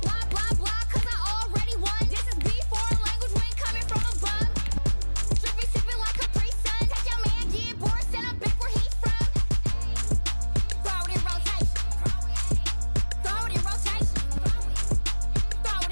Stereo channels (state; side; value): inverted; both; correlation -1.00